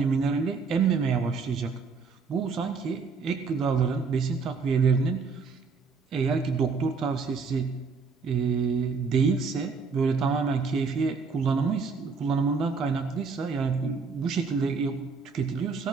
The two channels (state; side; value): quieter; left; 4.9 dB